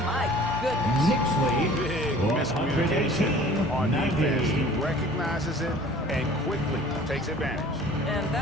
My goodness. Knicks lead. Big 118. miscommunication on 90. defense. He recognizes it and quickly takes advantage. And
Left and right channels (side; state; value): both; normal; correlation 0.48